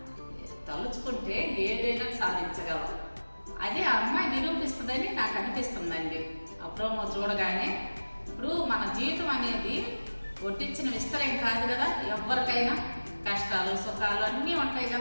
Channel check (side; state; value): both; inverted; correlation -1.00